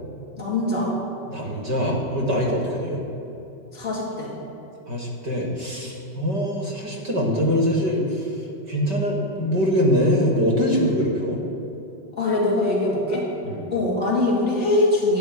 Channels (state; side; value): late; left; 5.2 ms